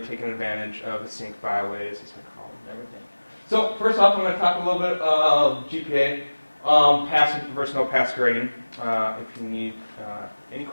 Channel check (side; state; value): both; inverted; correlation -1.00